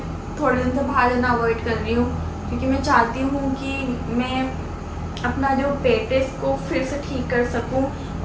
थोड़े दिन से बाहर जाना अवॉइड कर रही हूँ, क्योंकि मैं चाहती हूँ कि मैं अपना जो पेट है इसको फिर से ठीक कर सकूँ।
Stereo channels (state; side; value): identical; both; correlation 1.00